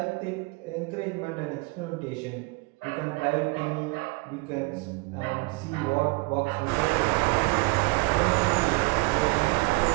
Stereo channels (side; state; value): left; quieter; 26.1 dB